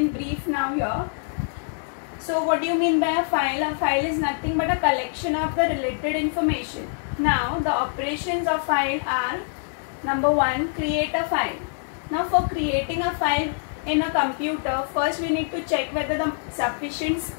brief now here. So what do you mean by a file? A file is nothing but a collection of the related information. Now the operations of file are: number 1, create a file. Now for creating a file in a computer, first we need to check whether the sufficient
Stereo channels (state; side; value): silent; right; 62 dB below the other